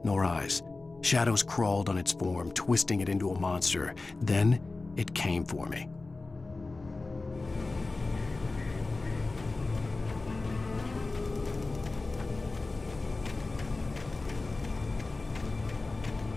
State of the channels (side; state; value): right; quieter; 3.4 dB